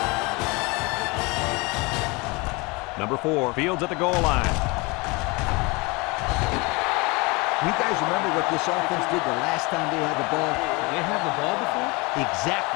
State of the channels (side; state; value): right; quieter; 26.5 dB